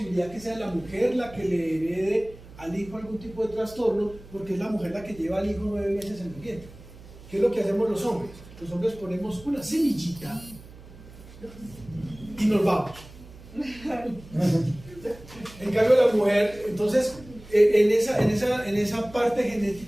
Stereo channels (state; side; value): noise; right; hum, 19 dB below the sound